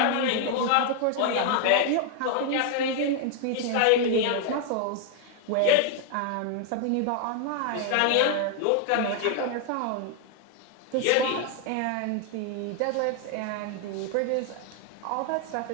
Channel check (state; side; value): different; both; correlation 0.00